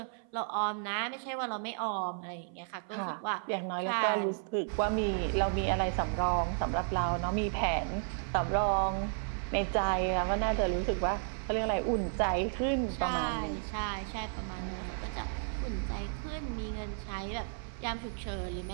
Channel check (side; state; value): left; silent; 56 dB below the other